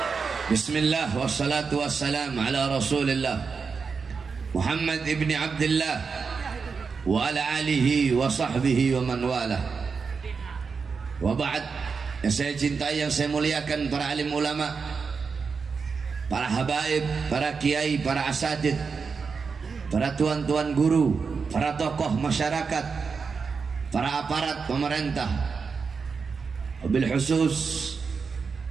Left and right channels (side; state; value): left; quieter; 5.3 dB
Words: Bismillah wassalatu wassalam ala rasulillah Muhammad ibn Abdullah wa ala alihi wa sahbihi wa man wala. Wa ba'd, yang saya cintai, yang saya muliakan, para alim ulama, para habaib, para kiai, para asatid, para tuan-tuan guru, para tokoh masyarakat, para aparat pemerintah, wabil khusus